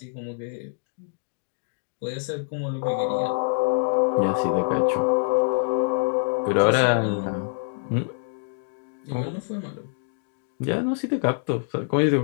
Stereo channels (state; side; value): silent; right; digital silence